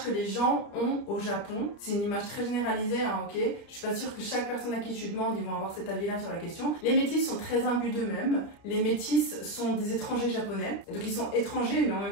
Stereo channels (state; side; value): late; right; 30 ms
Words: que les gens ont au Japon, c'est une image très généralisée hein, ok. Je suis pas sûre que chaque personne à qui tu demandes ils vont avoir cet avis là sur la question. Les métis sont très imbus d'eux-mêmes. Les métis sont des étrangers japonais, donc ils sont étrangers mais en même